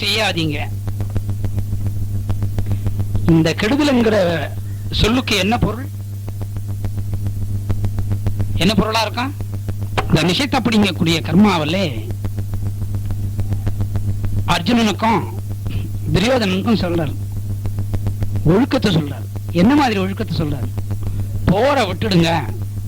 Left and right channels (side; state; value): both; identical; correlation 1.00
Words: இந்த கெடுதல்ங்கிற சொல்லுக்கு என்ன பொருள்? என்ன பொருளா இருக்கும்? இந்த நிஷத் அப்படிங்கக்கூடிய கர்மாவிலே அர்ஜுனனுக்கும் துரியோதனனுக்கும் சொல்றாரு, ஒழுக்கத்தை சொல்றாரு. என்ன மாதிரி ஒழுக்கத்தை சொல்றாரு? போற விட்டுடுங்க,